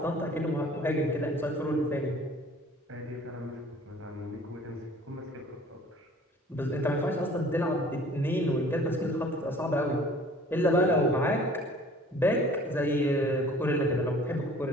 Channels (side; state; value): both; normal; correlation 0.51